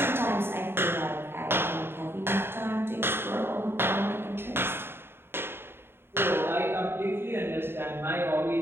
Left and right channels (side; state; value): left; late; 0.11 ms